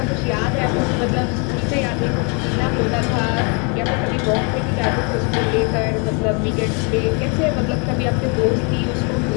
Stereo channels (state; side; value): quieter; right; 34.9 dB